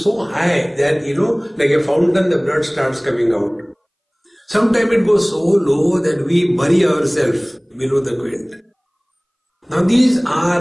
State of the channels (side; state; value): both; identical; correlation 1.00